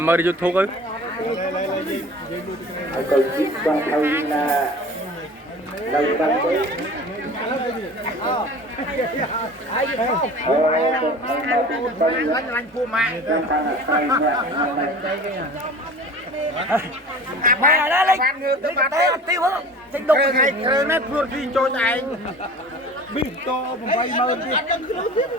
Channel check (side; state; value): both; normal; correlation 0.41